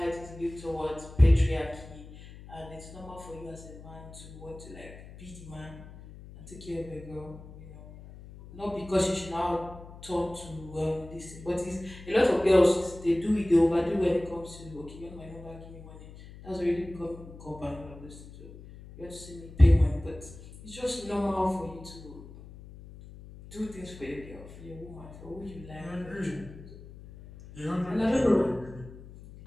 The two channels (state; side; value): noise; left; hum, 17 dB below the sound